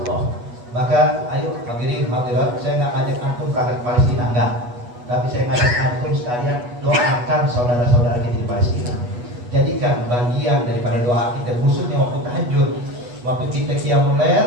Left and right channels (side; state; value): left; late; 8.2 ms